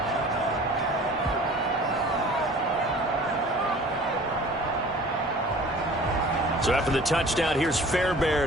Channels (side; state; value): both; normal; correlation 0.46